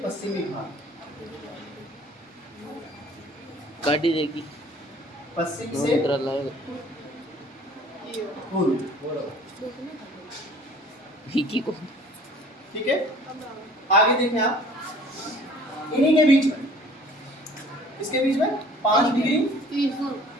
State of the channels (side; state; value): both; normal; correlation 0.51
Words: पश्चिमी भाग, काटी देगी पश्चिम से पूर्व, विकी को। ठीक है। आगे देखें आप, इन्हीं के बीच में, इसके बीच में 5 डिग्री